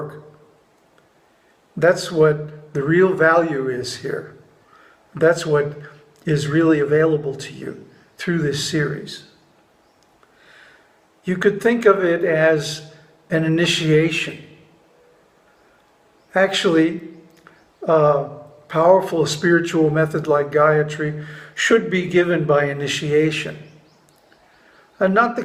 That's what the real value is here. That's what is really available to you through this series. You could think of it as an initiation. Actually, a powerful spiritual method like Gayatri should be given by initiation. And not the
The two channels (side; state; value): both; identical; correlation 1.00